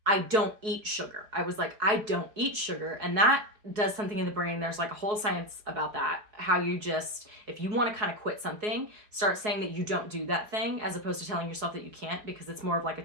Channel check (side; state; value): left; late; 4.7 ms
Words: I don't eat sugar. I was like, I don't eat sugar. And that does something in the brain. There's like a whole science about that. How you just, if you want to kind of quit something, start saying that you don't do that thing as opposed to telling yourself that you can't, because it's more of like a